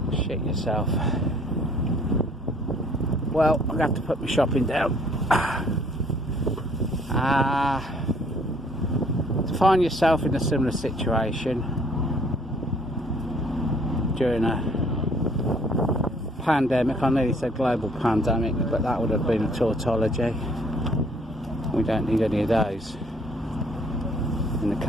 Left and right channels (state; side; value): normal; both; correlation 0.60